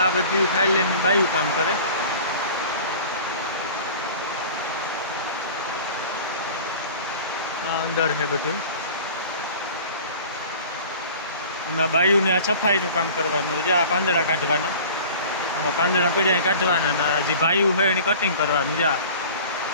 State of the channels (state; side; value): inverted; both; correlation -0.42